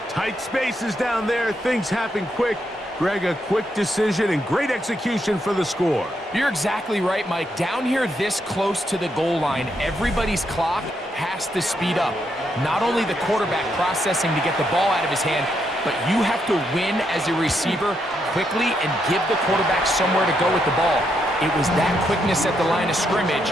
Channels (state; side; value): normal; both; correlation 0.79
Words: Tight spaces down there. Things happen quick. Greg, a quick decision and great execution for the score. You're exactly right, Mike. Down here this close to the goal line, everybody's clock has to speed up. Not only the quarterback processing to get the ball out of his hand, but you have to win as a receiver quickly and give the quarterback somewhere to go with the ball. It was that quickness at the line of scrimmage